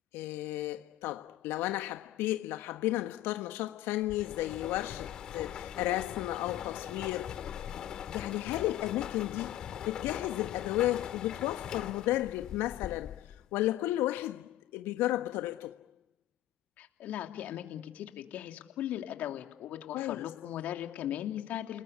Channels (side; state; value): right; quieter; 14.0 dB